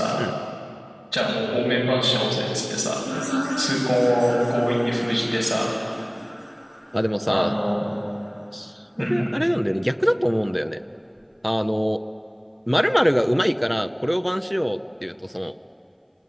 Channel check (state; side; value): identical; both; correlation 1.00